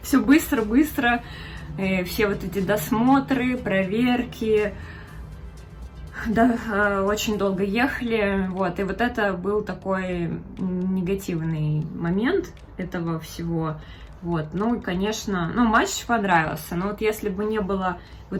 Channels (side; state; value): both; identical; correlation 1.00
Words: все быстро-быстро, все вот эти досмотры, проверки, да, очень долго ехали, вот, и вот это был такой негативный момент этого всего, вот, ну, и, конечно, ну, матч понравился, но вот если бы не было